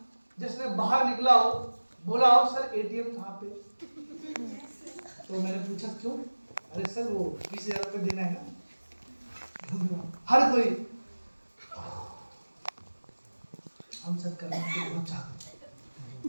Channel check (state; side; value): inverted; both; correlation -1.00